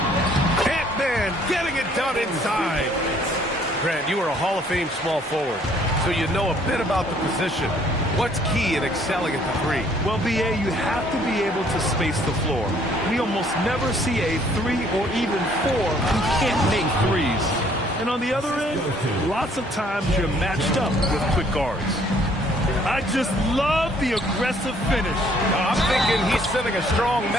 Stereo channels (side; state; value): both; normal; correlation 0.62